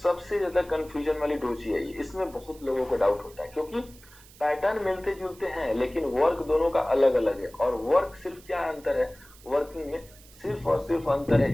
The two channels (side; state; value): right; noise; hiss, 23 dB below the sound